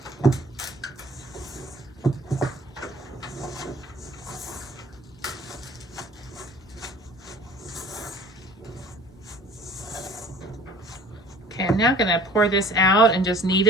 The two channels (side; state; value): both; normal; correlation 0.48